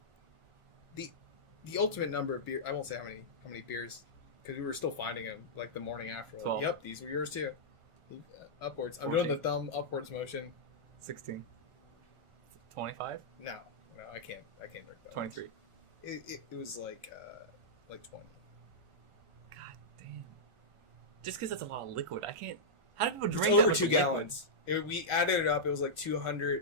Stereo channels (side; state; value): left; late; 1.4 ms